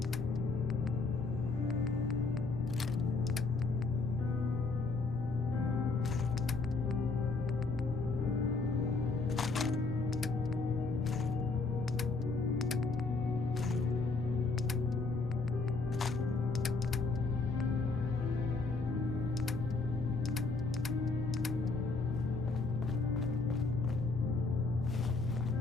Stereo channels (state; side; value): quieter; right; 3.9 dB